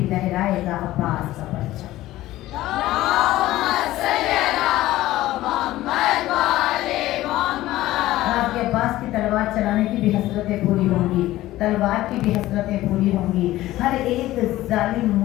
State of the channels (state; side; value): quieter; right; 15.9 dB